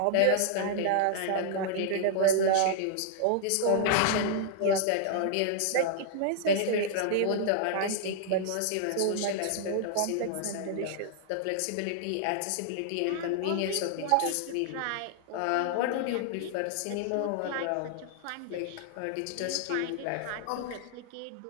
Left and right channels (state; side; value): different; both; correlation -0.01